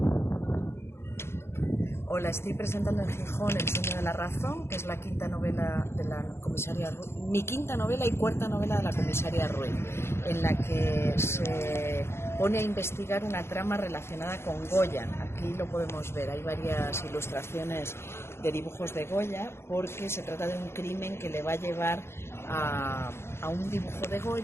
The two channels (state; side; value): late; right; 0.12 ms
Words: Hola, estoy presentando en Gijón El sueño de la razón, que es la quinta novela de la comisaria Ruiz, mi quinta novela y cuarta novela de la comisaria Ruiz, en la que se pone a investigar una trama relacionada con Goya. Aquí lo podemos ver, hay varias ilustraciones de dibujos de Goya, porque se trata de un crimen que le va a llevar a un dibujo de